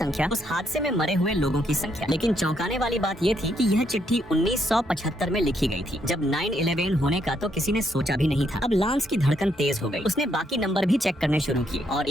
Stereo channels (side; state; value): both; normal; correlation 0.75